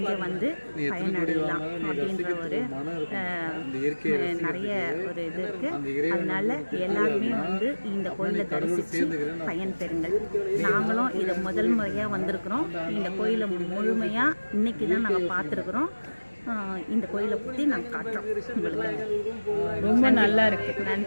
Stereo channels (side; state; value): both; inverted; correlation -1.00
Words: வந்து பயனடையலாம் அப்படின்ற ஒரு நிறைய ஒரு இது இருக்குது. அதனால் எல்லாருமே வந்து இந்த கோயிலை தரிசித்து பயன் பெறுங்கள். நாங்களும் இதை முதல் முறையாக வந்திருக்கிறோம். இந்த கோயிலை முழுமையாக இன்றைக்கி தான் நாங்கள் பார்த்துருக்குறோம். இந்த கோயிலை பற்றி நாங்கள் காட்டுறோம் உங்களுக்கு. ரொம்ப நல்லா இருக்குது.